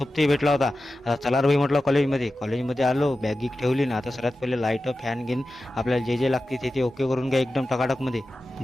भेटला होता. आता चला रे भाई म्हटलं कॉलेजमध्ये आलो. बॅग गिक ठेवली ना. आता सर्वात पहिले लाईट फॅन घेऊन आपल्याला जे जे लागते ते ओके करून घ्या एकदम टकाटकमध्ये.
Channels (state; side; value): normal; both; correlation 0.93